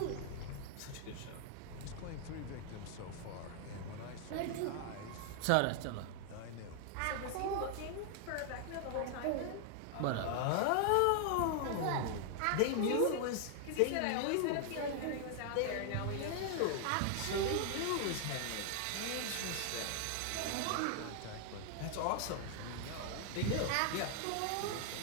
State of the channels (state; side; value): different; both; correlation 0.00